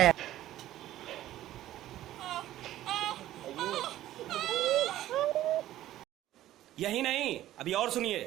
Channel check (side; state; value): left; quieter; 13.8 dB